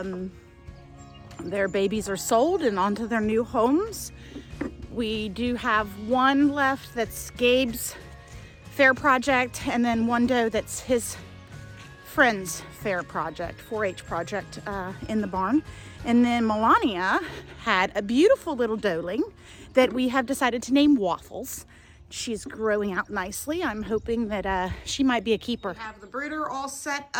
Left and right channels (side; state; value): both; identical; correlation 1.00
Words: Their babies are sold and onto their new homes. We do have one left that's Gabe's fair project, and then one doe that's his friend's fair project, 4-H project in the barn. And then Melania had a beautiful little doeling that we have decided to name Waffles. She's growing out nicely. I'm hoping that she might be a keeper. We have the brooder all set